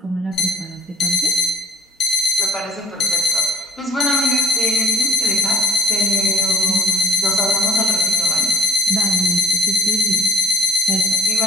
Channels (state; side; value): normal; both; correlation 0.57